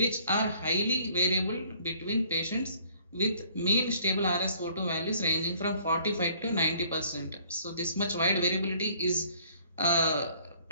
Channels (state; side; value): inverted; both; correlation -0.58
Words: are highly variable between patients with mean stable RSO2 values ranging from 45 to 90%. So this much wide variability is